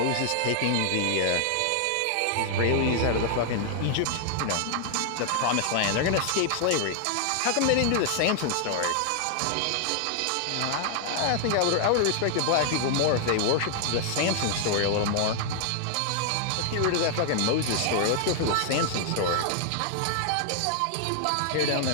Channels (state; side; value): different; both; correlation 0.00